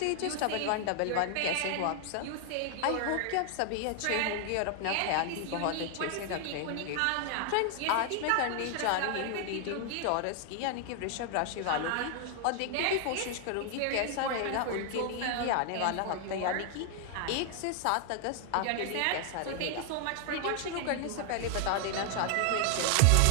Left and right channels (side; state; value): both; different; correlation 0.00